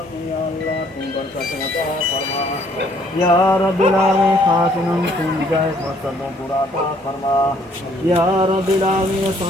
में या अल्लाह तुम बरकत अता फरमा या रब्बिल आलमीन। खासिन तुम जायज़ मकसदों पूरा अता फरमा या रब्बिल आलमीन।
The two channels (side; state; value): both; normal; correlation 0.63